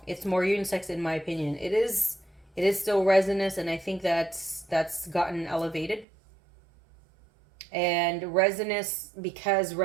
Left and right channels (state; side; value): drops out; left; at 6.1 s